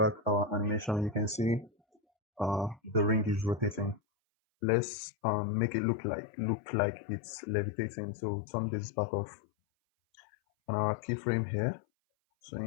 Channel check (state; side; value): drops out; right; at 4.0 s